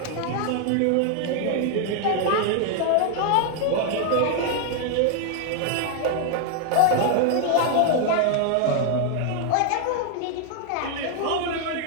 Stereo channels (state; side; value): different; both; correlation 0.00